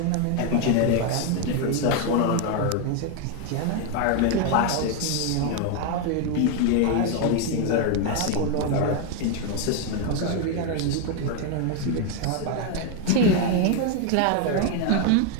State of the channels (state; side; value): different; both; correlation 0.01